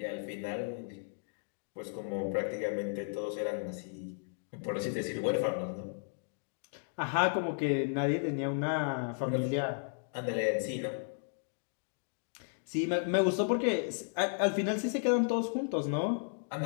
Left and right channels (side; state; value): right; silent; digital silence